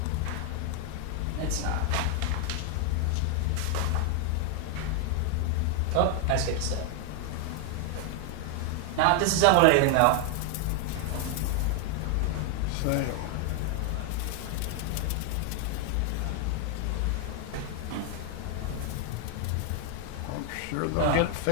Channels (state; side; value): different; both; correlation 0.00